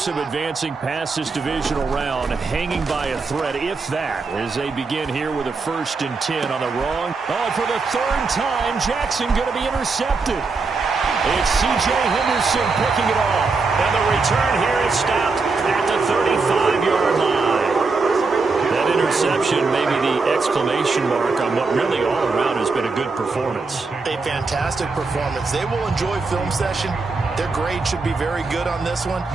of advancing past this divisional round hanging by a thread, if that, as they begin here with a 1st and 10 on the wrong. Oh, for the third time, Jackson going to be intercepted. It's C.J. Henderson picking it off. And the return here is stopped at the 35-yard line. That interception may be the exclamation mark on what really all around has been a good performance. A fantastic performance. They will enjoy film session. Their grade should be very good on this one.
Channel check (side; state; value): left; quieter; 4.2 dB